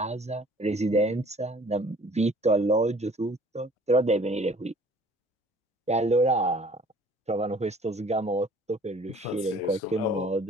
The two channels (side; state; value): both; normal; correlation 0.53